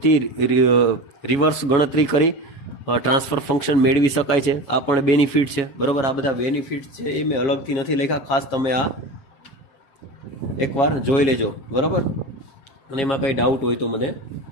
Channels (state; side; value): late; right; 7.2 ms